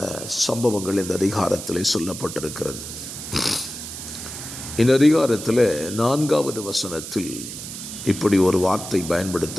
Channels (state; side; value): noise; right; hiss, 9 dB below the sound